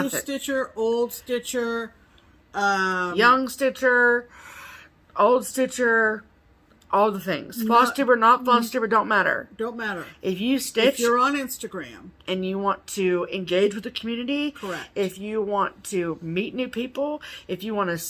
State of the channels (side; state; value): both; identical; correlation 1.00